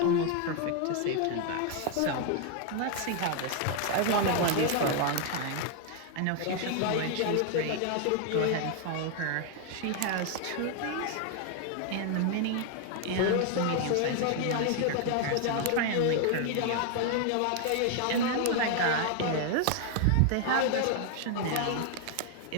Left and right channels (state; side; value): different; both; correlation 0.00